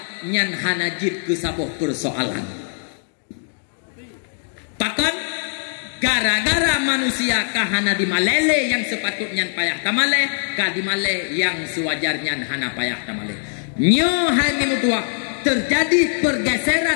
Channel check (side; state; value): right; silent; digital silence